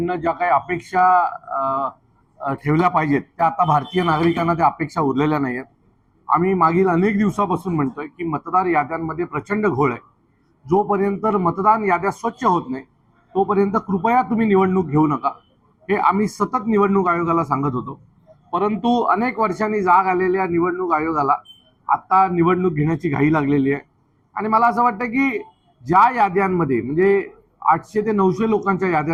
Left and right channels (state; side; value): identical; both; correlation 1.00